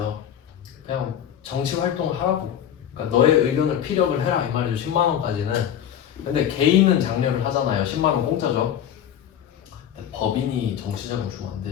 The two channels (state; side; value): quieter; right; 9.8 dB